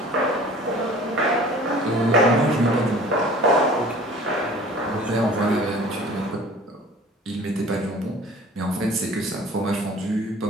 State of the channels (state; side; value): normal; both; correlation 0.46